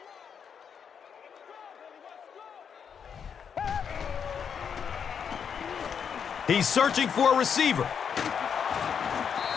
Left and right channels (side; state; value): right; quieter; 7.2 dB